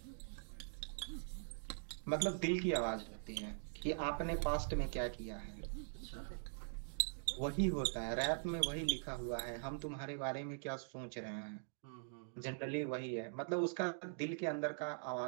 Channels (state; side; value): silent; left; digital silence